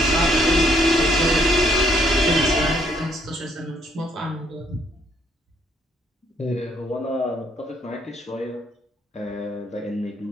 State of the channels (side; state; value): both; normal; correlation 0.69